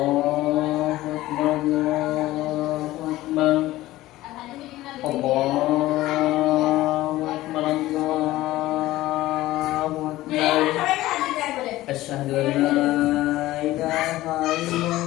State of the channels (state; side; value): quieter; right; 16.6 dB